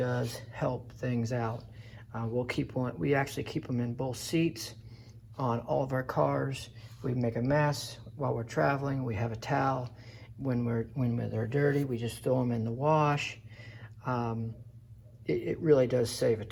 help things out. We actually keep them in both seats on all of our cars. We make a mess while we're traveling. We have a towel. When they're dirty, we just throw them in the wash. It really does save a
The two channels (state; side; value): identical; both; correlation 1.00